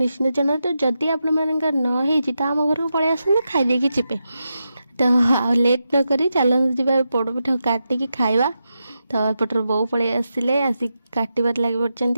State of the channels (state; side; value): inverted; both; correlation -0.88